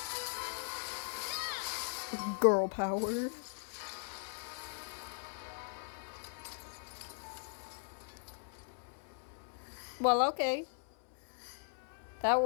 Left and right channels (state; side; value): silent; right; 52 dB below the other